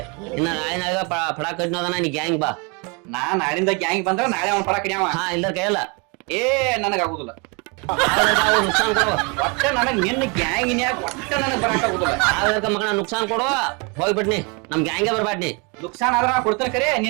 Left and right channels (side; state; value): left; quieter; 31.2 dB